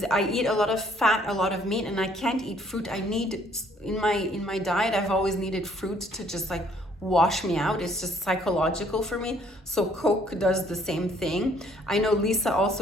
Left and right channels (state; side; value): normal; both; correlation 0.62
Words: I eat a lot of fat, a lot of meat, and I can't eat fruit. I need, in my diet, I've always needed fruit to just like wash me out. It's just psychological for me. So Coke does the same thing. I know Lisa